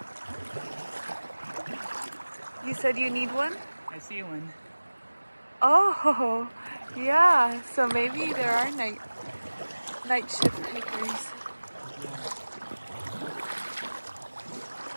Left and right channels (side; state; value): both; inverted; correlation -1.00